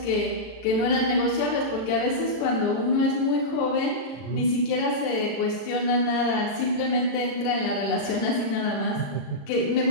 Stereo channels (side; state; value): right; late; 34 ms